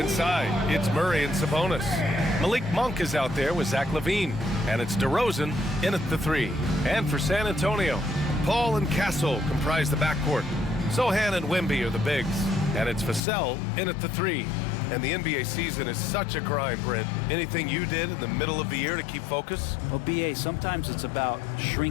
it's Murray and Sabonis. Malik Monk is out there with Zach LaVine, and it's DeRozan in at the 3. And for San Antonio, Paul and Castle comprise the backcourt. Sohan and Wemby are the bigs, and it's Vassell in at the 3. And the NBA season is such a grind, Brent. Anything you did in the middle of the year to keep focus? Well, BA, sometimes it's about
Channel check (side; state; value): right; drops out; at 13.2 s